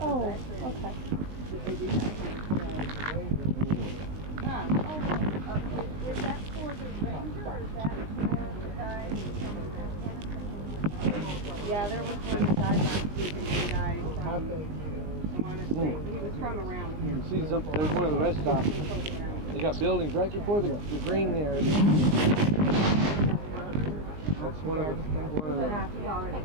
Oh, okay. Huh. Is that for the ranger or is that for the guy? Yeah, there was one that died last week and he died from. Honestly, he was from around You here. can see something. There's one of the rest stops. They got buildings right before the green there. That's one of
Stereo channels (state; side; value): late; left; 19 ms